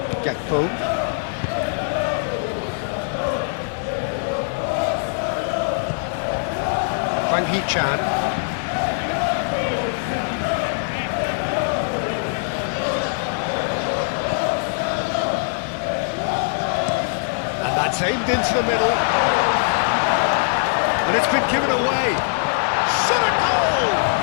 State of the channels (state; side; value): silent; right; digital silence